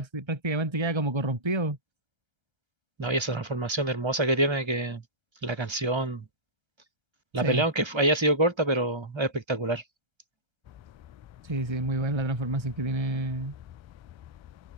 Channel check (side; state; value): left; late; 1.3 ms